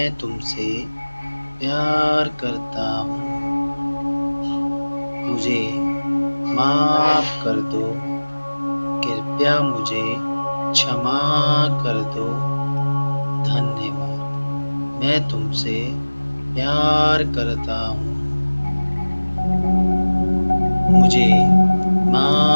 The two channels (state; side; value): inverted; both; correlation -1.00